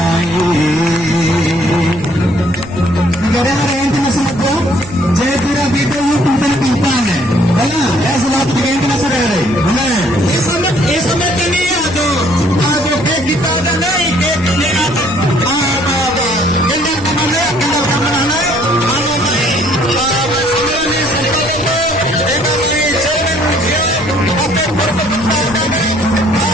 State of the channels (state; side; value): noise; right; hum, 15 dB below the sound